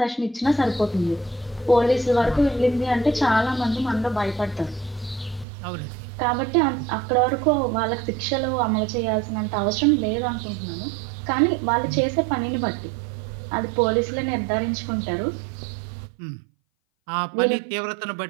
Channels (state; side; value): drops out; left; at 5.5 s